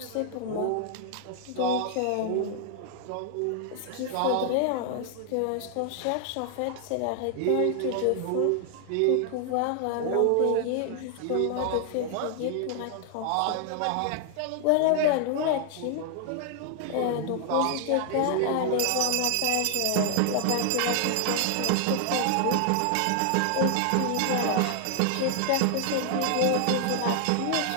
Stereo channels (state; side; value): different; both; correlation 0.00